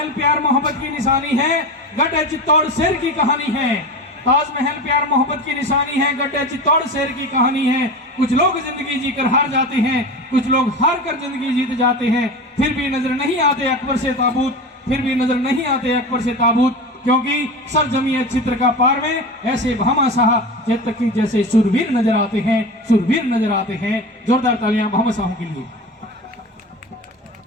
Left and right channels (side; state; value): both; normal; correlation 0.28